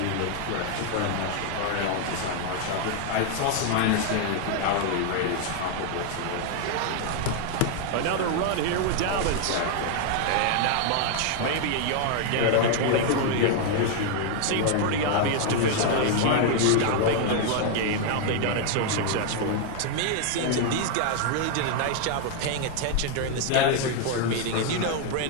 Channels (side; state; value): both; different; correlation 0.00